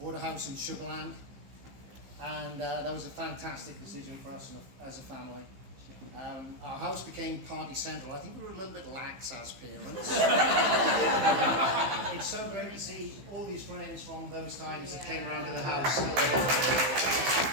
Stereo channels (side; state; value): left; late; 15 ms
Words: a house in Sugarland, And that was a fantastic decision for us as a family. Our house became party central. I think we were a little bit lax as parents. It's so great to see all these friends from those times that came around to the house.